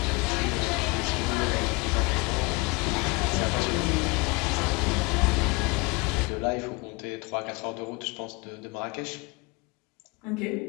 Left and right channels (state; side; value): quieter; right; 26.8 dB